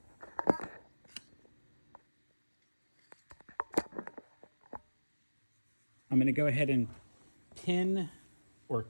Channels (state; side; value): inverted; both; correlation -1.00